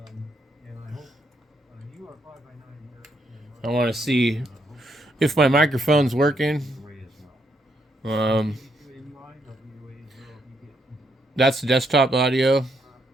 I want to see if my microphone's working. That's desktop audio.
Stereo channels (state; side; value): normal; both; correlation 0.76